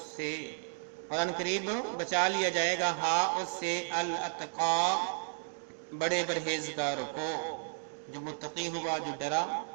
और अनकरीब बचा लिया जाएगा हा उससे, अल अतका, बड़े परहेजगार को, जो मुत्तकी हुआ, जो डरा।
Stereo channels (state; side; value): silent; left; digital silence